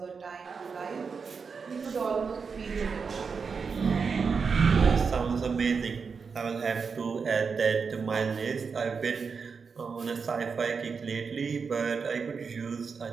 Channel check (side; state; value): left; quieter; 5.4 dB